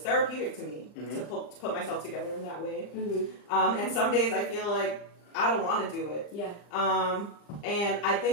therapeutic to me to put myself together in that way. And some days I feel like I don't want to do it. Yeah. And I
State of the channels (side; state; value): right; late; 39 ms